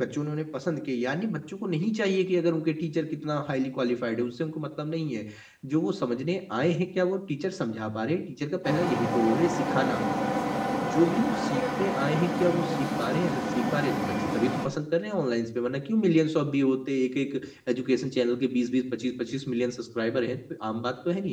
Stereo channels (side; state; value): both; identical; correlation 1.00